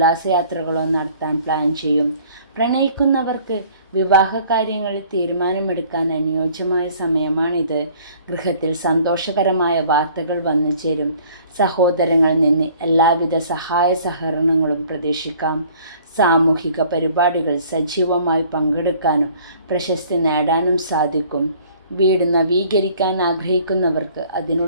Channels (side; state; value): both; inverted; correlation -0.54